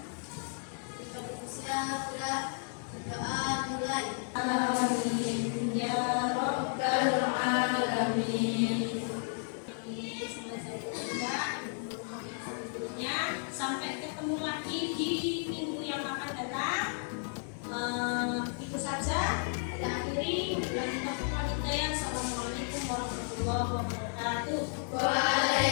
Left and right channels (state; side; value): silent; right; 56 dB below the other